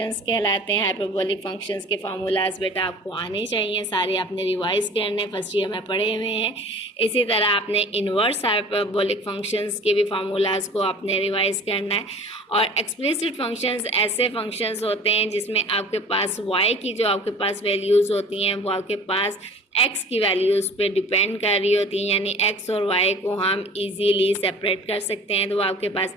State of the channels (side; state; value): both; normal; correlation 0.44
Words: कहलाते हैं। हाइपरबोलिक फंक्शंस के फार्मूलाज बेटा आपको आने चाहिए, सारे आपने रिवाइज करने फर्स्ट ईयर में पढ़े हुए हैं। इसी तरह आपने इन्वर्स हाइपरबोलिक फंक्शंस के भी फार्मूलाज को आपने रिवाइज करना है। और एक्सप्लिसिट फंक्शंस ऐसे फंक्शंस होते हैं जिसमें आपके पास y की जो आपके पास वैल्यूज़ होती हैं वो आपके पास x की वैल्यूज़ पे डिपेंड कर रही होती हैं, यानी x और y को हम इजीली सेपरेट कर सकते हैं, तो वो आपके पास